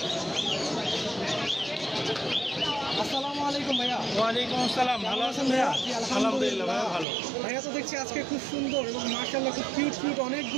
আসসালামু আলাইকুম ভাইয়া। ওয়ালাইকুম আসসালাম। ভালো আছেন ভাইয়া? আলহামদুলিল্লাহ ভাই ভালো। ভাইয়া তো দেখছি আজকে খুব সুন্দর এবং মাশাআল্লাহ খুব কিউট কিউট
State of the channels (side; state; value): left; drops out; at 7.1 s